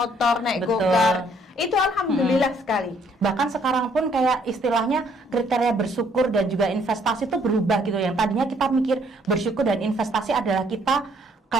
naik go-kart. Itu alhamdulillah sekali. Bahkan sekarang pun kayak istilahnya kriteria bersyukur dan juga investasi itu berubah gitu. Yang tadinya kita mikir bersyukur dan investasi adalah kita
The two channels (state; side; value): normal; both; correlation 0.65